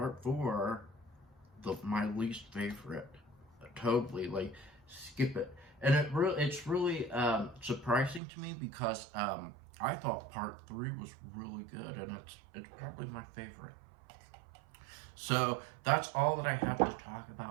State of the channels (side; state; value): left; drops out; at 8.2 s